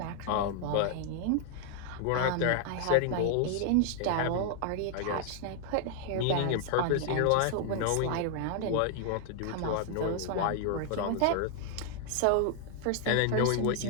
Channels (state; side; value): different; both; correlation 0.00